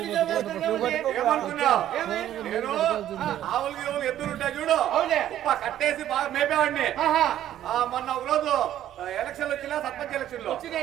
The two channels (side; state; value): left; quieter; 11.9 dB